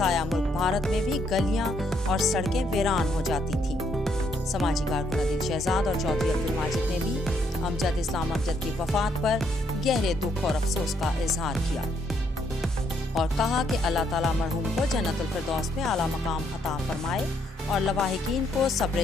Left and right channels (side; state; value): both; normal; correlation 0.72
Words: ملک بھارت میں بھی گلیاں اور سڑکیں ویران ہو جاتی تھیں۔ سماجی کارکن عادل شہزاد اور چودھری عبدالماجد نے بھی امجد اسلام امجد کی وفات پر گہرے دکھ اور افسوس کا اظہار کیا اور کہا کہ اللہ تعالیٰ مرحوم کو جنت الفردوس میں اعلیٰ مقام عطا فرمائے اور لواحقین کو صبر